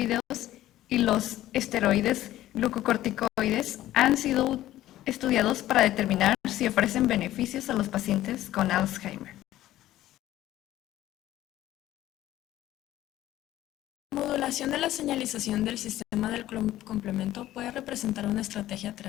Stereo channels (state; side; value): quieter; right; 14.2 dB